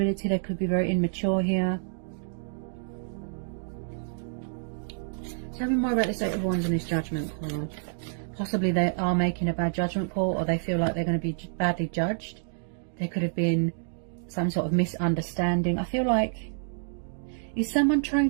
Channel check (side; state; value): left; silent; digital silence